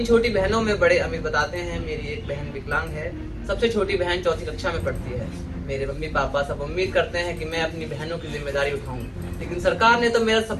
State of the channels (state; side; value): identical; both; correlation 1.00